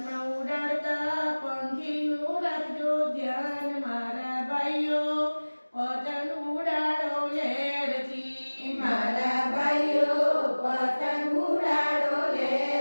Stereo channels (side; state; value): both; inverted; correlation -1.00